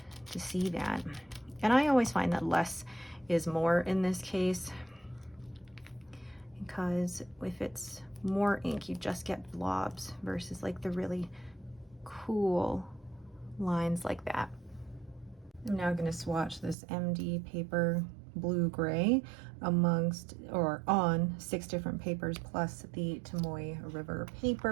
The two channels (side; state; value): left; drops out; at 16.8 s